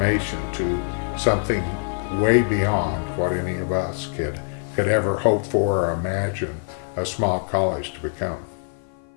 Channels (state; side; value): silent; right; 55 dB below the other